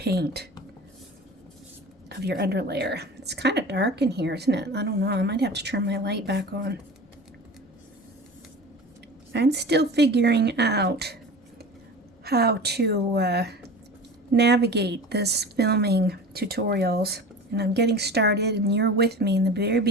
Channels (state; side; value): normal; both; correlation 0.35